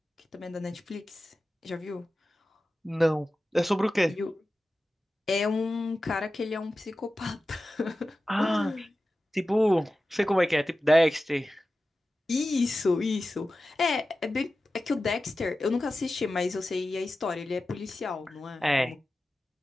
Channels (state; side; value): normal; both; correlation 0.94